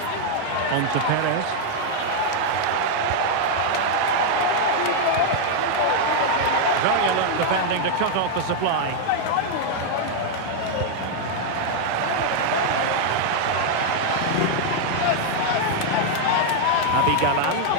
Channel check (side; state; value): both; different; correlation 0.00